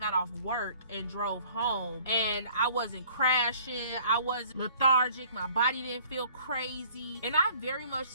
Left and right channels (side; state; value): both; inverted; correlation -0.55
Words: off work and drove home, and I wasn't crashing, I wasn't lethargic, my body didn't feel crazy, and I very much